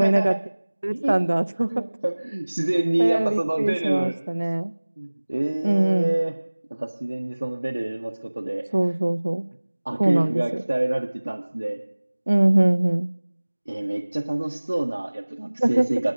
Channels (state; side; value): inverted; both; correlation -1.00